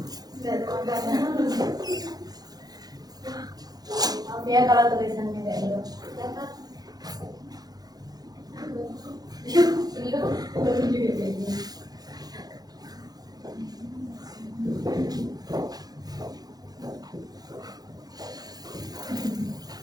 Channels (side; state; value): left; late; 0.19 ms